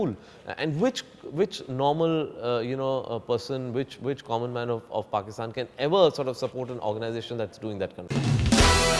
And which normal you know, person, which common man of Pakistan can ever sort of support an organization that's doing that kind of thing?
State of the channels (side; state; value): both; identical; correlation 1.00